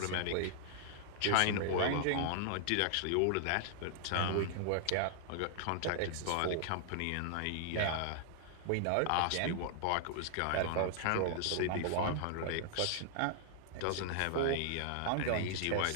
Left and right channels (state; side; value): different; both; correlation 0.00